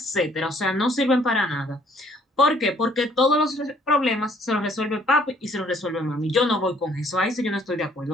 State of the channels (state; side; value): normal; both; correlation 0.62